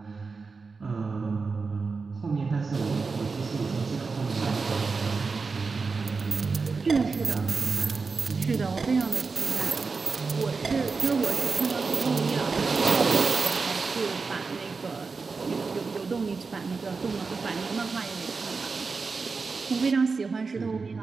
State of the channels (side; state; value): left; quieter; 4.5 dB